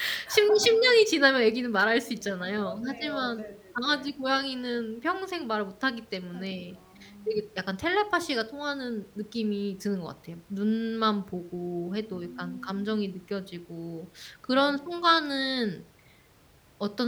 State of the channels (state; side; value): identical; both; correlation 1.00